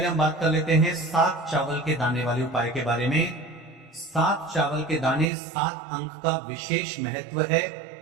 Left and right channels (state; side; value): drops out; left; at 5.3 s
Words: हम बात कर लेते हैं 7 चावल के दाने वाले उपाय के बारे में। 7 चावल के दाने 7 अंक का विशेष महत्व है।